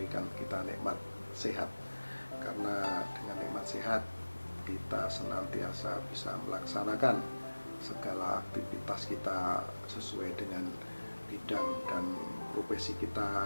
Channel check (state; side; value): inverted; both; correlation -1.00